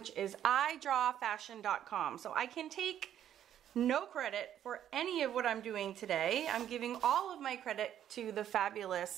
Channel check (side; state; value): left; quieter; 10.6 dB